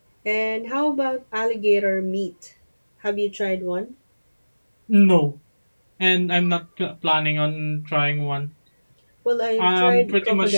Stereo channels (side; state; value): both; inverted; correlation -1.00